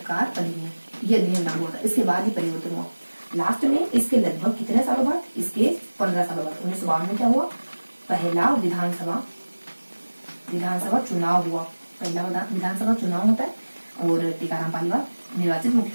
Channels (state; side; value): inverted; both; correlation -1.00